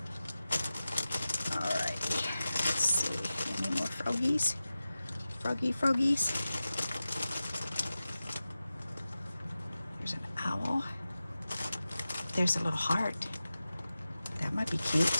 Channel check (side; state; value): both; inverted; correlation -0.94